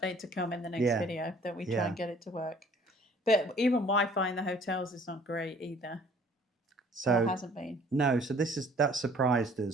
to come in the next video that we try Yeah. and get it to work. But even Wi-Fi in the hotels is not great either. So it hasn't been. No, so that surprised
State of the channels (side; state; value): both; normal; correlation 0.55